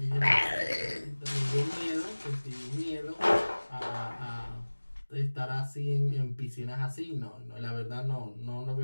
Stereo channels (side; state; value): both; inverted; correlation -1.00